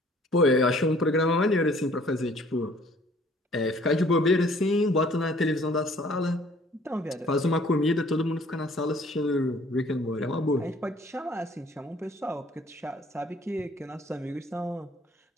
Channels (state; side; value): normal; both; correlation 0.57